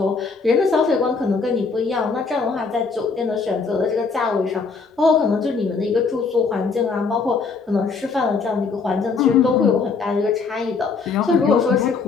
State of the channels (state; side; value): quieter; right; 4.8 dB